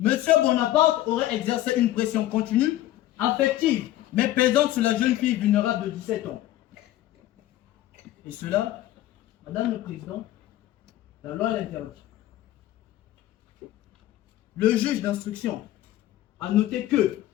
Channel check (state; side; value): quieter; right; 14.3 dB